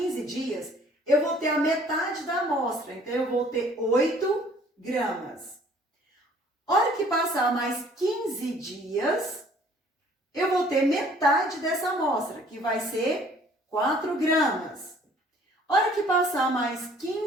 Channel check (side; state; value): both; normal; correlation 0.56